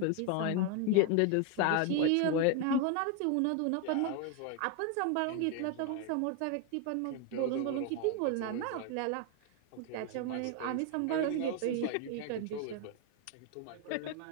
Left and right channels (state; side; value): different; both; correlation 0.01